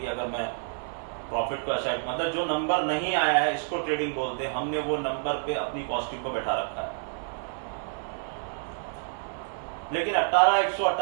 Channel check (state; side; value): silent; left; 59 dB below the other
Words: अगर मैं प्रॉफिट को असाइड, मतलब जो नंबर नहीं आया है इसको ट्रेडिंग बोलते हैं, हमने वो नंबर पे अपनी कॉस्टिंग को बैठा रखा है। लेकिन